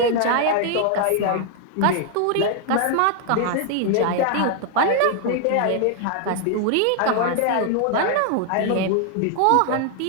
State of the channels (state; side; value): different; both; correlation 0.00